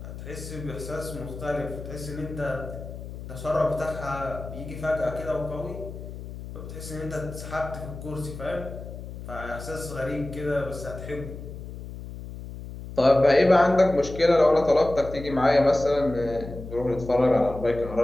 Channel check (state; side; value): noise; left; hum, 11 dB below the sound